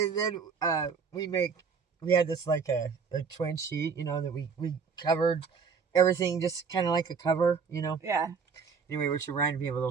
then we had this like a twin sheet, that we covered everything just kind of like a cover, Yeah. Anyway, which reminded me of a little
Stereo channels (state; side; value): quieter; left; 5.7 dB